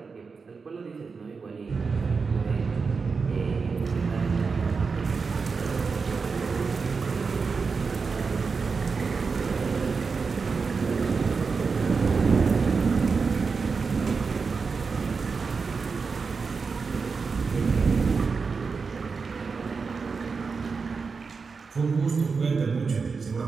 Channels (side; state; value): left; quieter; 4.9 dB